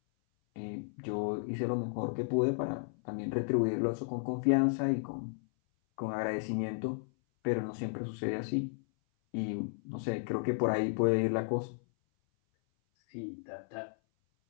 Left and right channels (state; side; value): silent; right; 55 dB below the other